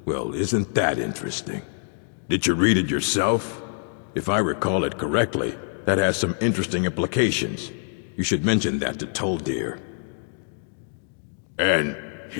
Well, isn't that interesting? Did you read it yourself? If I recall it correctly, that has some interesting implications. You should mention that to Toldir. And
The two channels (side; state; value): right; silent; digital silence